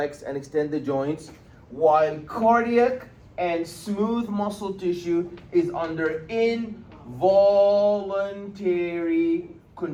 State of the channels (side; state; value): both; identical; correlation 1.00